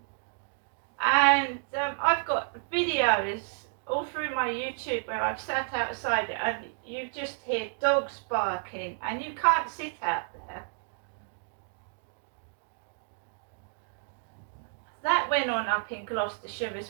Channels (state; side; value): silent; left; digital silence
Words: And I've got videos all through my YouTube where I've sat outside and you just hear dogs barking and you can't sit out there. That went on up in Gloucestershire